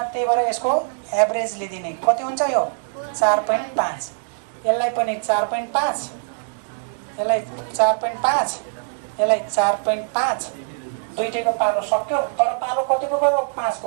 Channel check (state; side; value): silent; left; digital silence